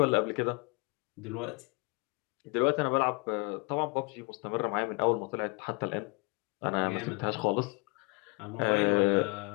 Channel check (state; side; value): quieter; right; 28.7 dB